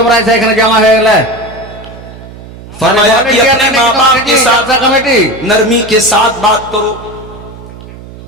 ऐसा एखने जमा है गला फरमाया कि अपने माँ बाप के साथ कमेटी नरमी के साथ बात करो।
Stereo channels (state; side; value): noise; right; hum, 17 dB below the sound